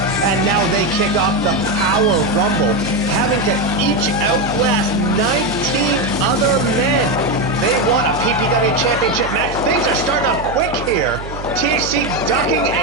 and now they kick off the Power Rumble, having to each outlast 19 other men. They want a PPW Championship match. Things are starting off quick here. THC ducking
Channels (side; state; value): right; noise; hum, 11 dB below the sound